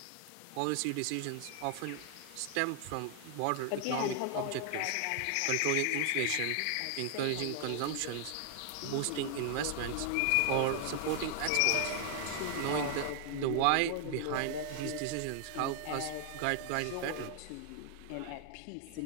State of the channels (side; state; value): both; different; correlation 0.00